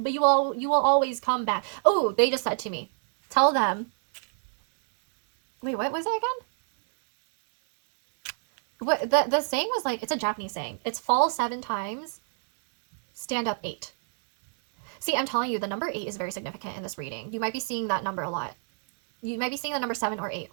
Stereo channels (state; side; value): silent; left; 60 dB below the other